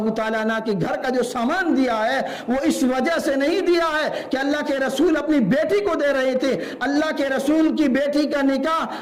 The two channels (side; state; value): both; identical; correlation 1.00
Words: تعالیٰ عنہ کے گھر کا جو سامان دیا ہے وہ اس وجہ سے نہیں دیا ہے کہ اللہ کے رسول اپنی بیٹی کو دے رہے تھے. اللہ کے رسول کی بیٹی کا